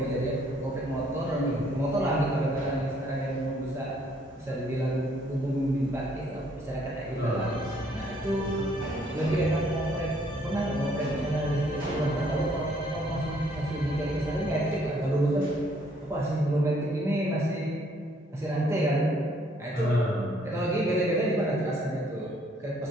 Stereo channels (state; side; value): normal; both; correlation 0.65